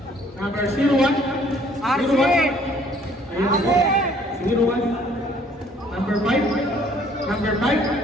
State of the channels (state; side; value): normal; both; correlation 0.59